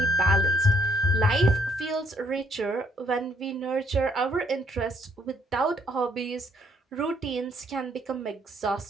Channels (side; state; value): both; normal; correlation 0.69